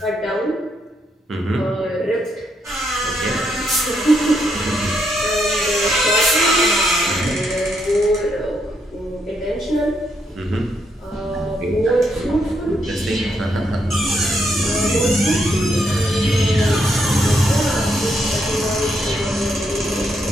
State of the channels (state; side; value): normal; both; correlation 0.77